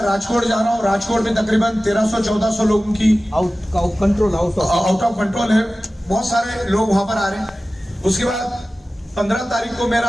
राजकोट जा रहा हूँ, राजकोट में तकरीबन 1300-1400 लोगों की आउट ऑफ कंट्रोल है, बहुत सारे लोग वहां पर आ रहे हैं। उसके बाद 15 तारीख को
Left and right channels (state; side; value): normal; both; correlation 0.96